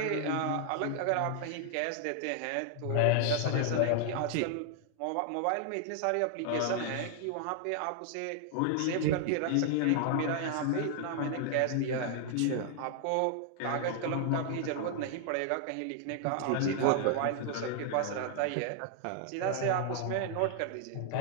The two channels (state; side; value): different; both; correlation 0.00